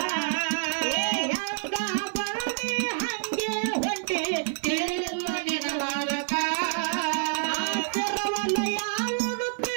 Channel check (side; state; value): left; silent; digital silence